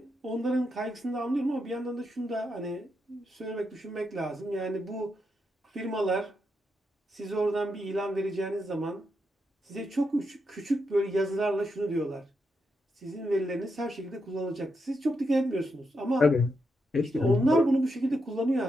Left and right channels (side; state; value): both; normal; correlation 0.83